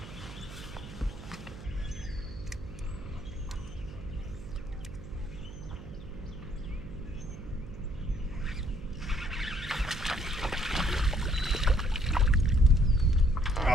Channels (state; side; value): noise; right; hum, 13 dB below the sound